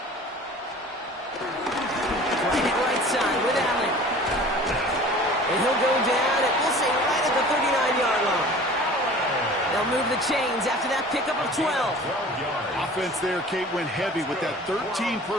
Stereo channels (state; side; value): normal; both; correlation 0.44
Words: Right side with Allen. And he'll go down, and we'll say right at the 39-yard line. They'll move the chains after that pickup of 12. Offense there, Kate, went heavy with that 13